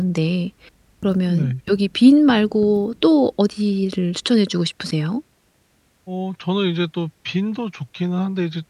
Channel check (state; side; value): identical; both; correlation 1.00